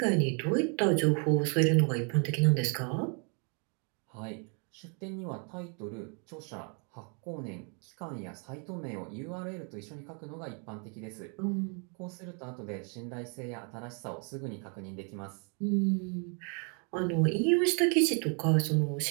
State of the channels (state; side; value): quieter; left; 37.9 dB